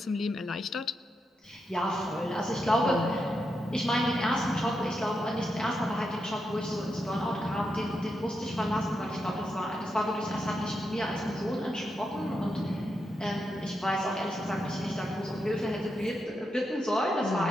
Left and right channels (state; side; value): normal; both; correlation 0.85